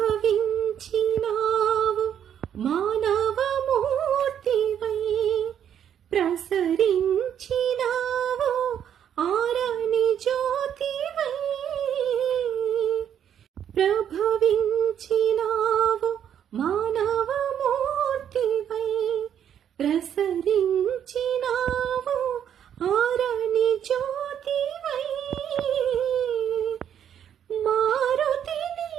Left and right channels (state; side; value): quieter; left; 9.3 dB